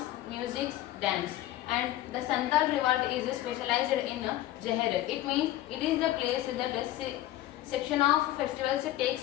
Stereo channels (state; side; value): quieter; right; 14.6 dB